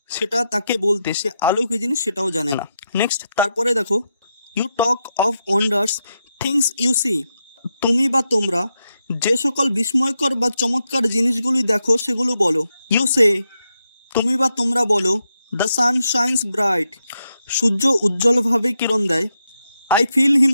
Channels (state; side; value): inverted; both; correlation -0.85